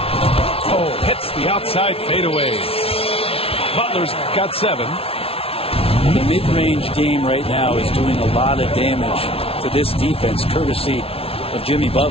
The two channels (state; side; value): late; right; 0.27 ms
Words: hits the outside fadeaway. Butler's got 7. The mid-range game right now is doing a lot of damage to this defense, courtesy of Jimmy